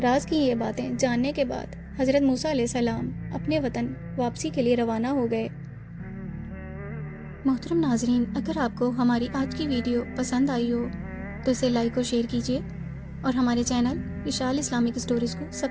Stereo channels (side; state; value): both; identical; correlation 1.00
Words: راز کی یہ باتیں جاننے کے بعد حضرت موسیٰ علیہ السلام اپنے وطن واپسی کے لیے روانہ ہو گئے۔ محترم ناظرین، اگر آپ کو ہماری آج کی ویڈیو پسند آئی ہو تو اسے لائک اور شیئر کیجیے اور ہمارے چینل وشال اسلامک اسٹوریز کو